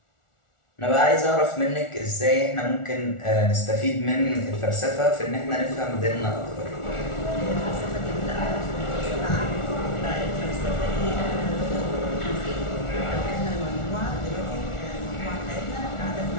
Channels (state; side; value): late; right; 1.4 ms